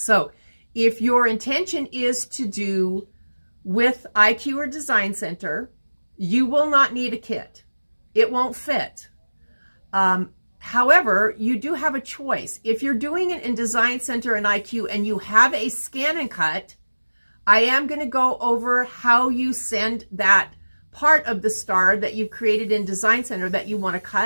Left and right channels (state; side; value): inverted; both; correlation -1.00